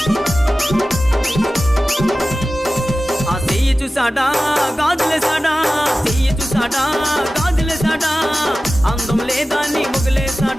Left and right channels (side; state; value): both; normal; correlation 0.95